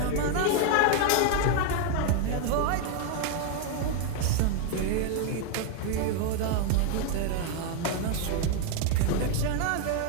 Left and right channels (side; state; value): both; different; correlation 0.00